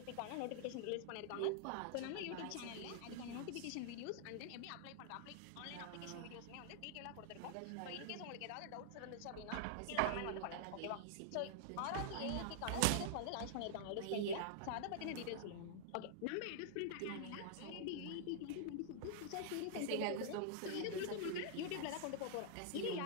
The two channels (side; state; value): both; different; correlation -0.01